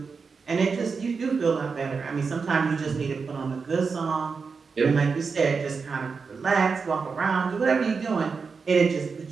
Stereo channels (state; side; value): quieter; left; 5.1 dB